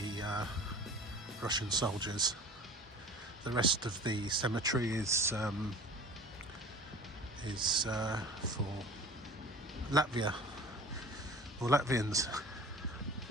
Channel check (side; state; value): both; normal; correlation 0.41